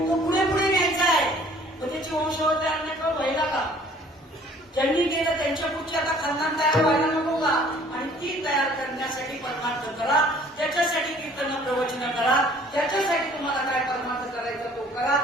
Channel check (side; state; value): both; normal; correlation 0.55